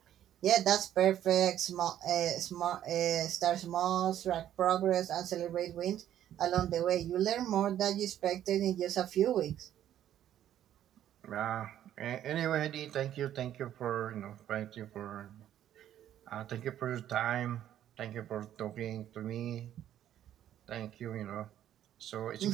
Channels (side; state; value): left; quieter; 11.3 dB